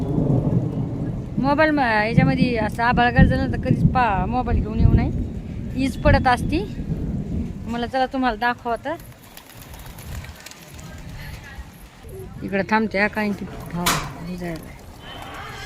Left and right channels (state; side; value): identical; both; correlation 1.00